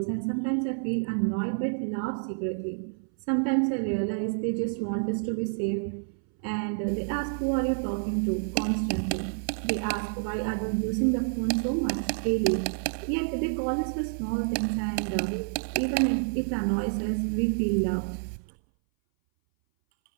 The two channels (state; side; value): silent; left; 59 dB below the other